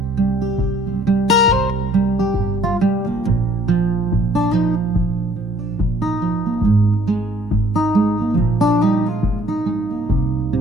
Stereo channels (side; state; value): both; normal; correlation 0.61